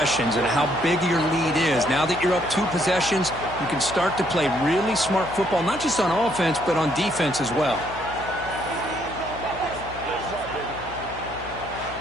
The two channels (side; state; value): left; noise; hum, 15 dB below the sound